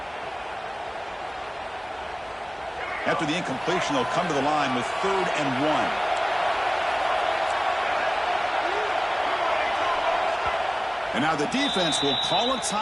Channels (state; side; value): identical; both; correlation 1.00